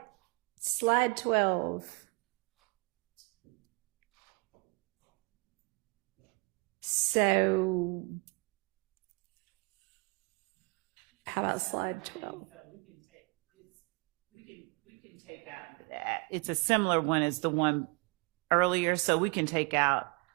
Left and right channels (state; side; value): quieter; left; 29.1 dB